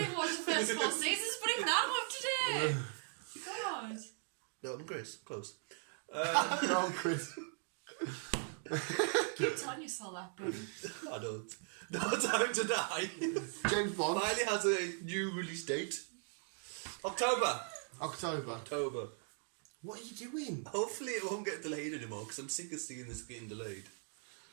even watched the first 4 seasons, but even I'm up to date. God. No, I'm Chris. Close. No, Chris. Keep telling yourself that, buddy. I don't. No Time to Die. James Bond. Finally has a new release date. October. October. What are you doing? Hopefully it won't get delayed anymore because I'm sick of seeing this getting delayed.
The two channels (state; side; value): silent; left; 52 dB below the other